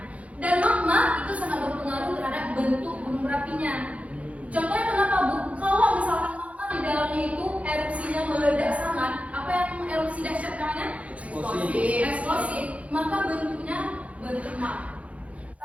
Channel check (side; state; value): left; late; 0.065 ms